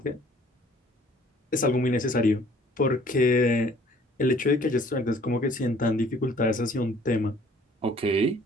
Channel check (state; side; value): normal; both; correlation 0.55